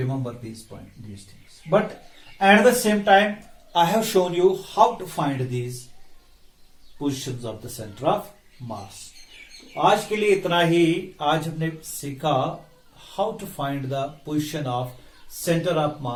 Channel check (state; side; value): identical; both; correlation 1.00